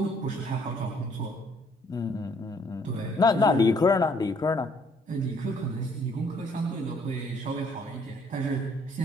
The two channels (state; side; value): normal; both; correlation 0.64